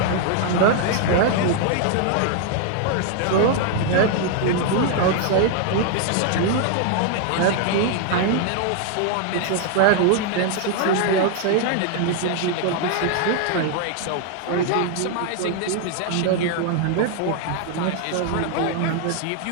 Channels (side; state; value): both; different; correlation 0.00